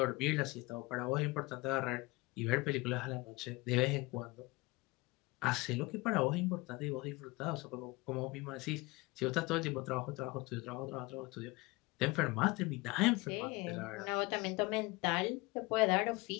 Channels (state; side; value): quieter; right; 23.3 dB